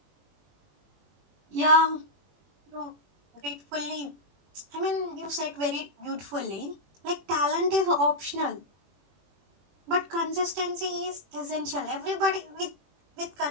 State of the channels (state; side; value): late; left; 21 ms